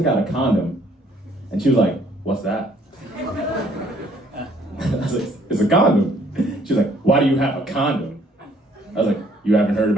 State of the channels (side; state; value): both; normal; correlation 0.63